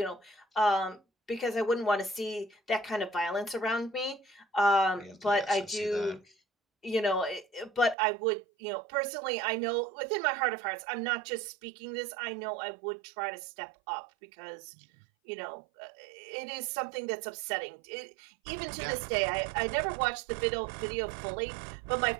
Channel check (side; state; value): left; drops out; at 8.0 s